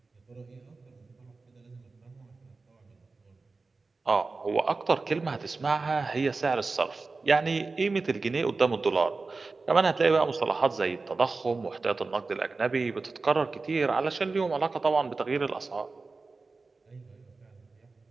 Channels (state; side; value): quieter; left; 3.9 dB